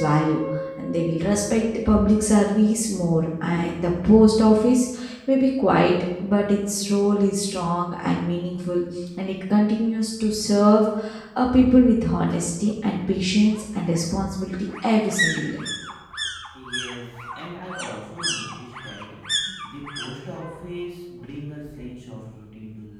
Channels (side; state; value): both; identical; correlation 1.00